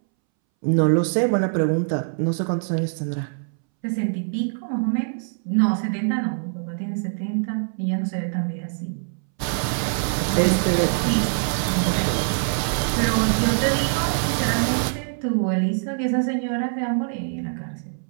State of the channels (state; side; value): silent; left; 63 dB below the other